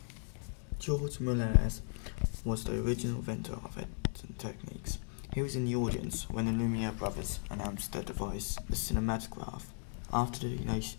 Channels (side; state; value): right; silent; 54 dB below the other